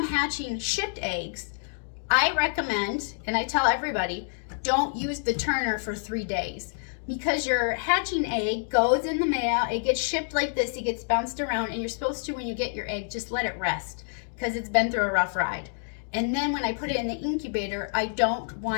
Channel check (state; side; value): silent; right; digital silence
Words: hatching shipped eggs, I recommend, and I tell everybody, don't use the turner for 3 days. Because your hatching egg goes in the mail, it gets shipped like this, it gets bounced around, and you're supposed to, when you get your egg, just let it rest because it's been through a rough ride. And then when I put it in the incubator, I don't